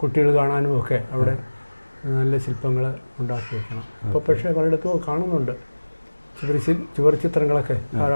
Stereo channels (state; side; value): inverted; both; correlation -1.00